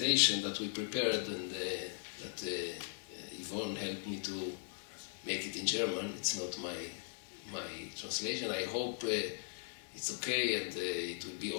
that we prepared, and that Yvonne helped me to make it in German, it's not my translation. I hope it's okay and it will be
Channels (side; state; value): right; silent; 52 dB below the other